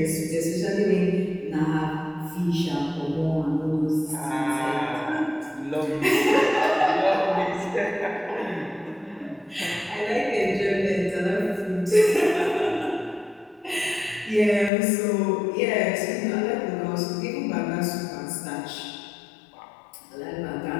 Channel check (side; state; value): right; drops out; at 14.7 s